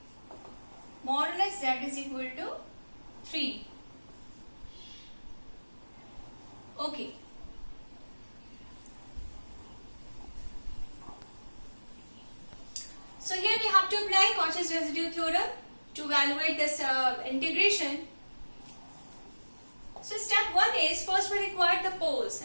modulus z is equal to 3. Okay. So here we have to apply Cauchy's residue theorem to evaluate this integration. So step 1 is, first we require the poles,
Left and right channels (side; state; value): both; inverted; correlation -1.00